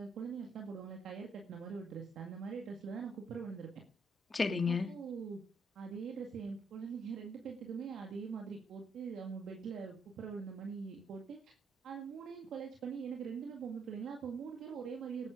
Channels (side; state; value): both; normal; correlation 0.73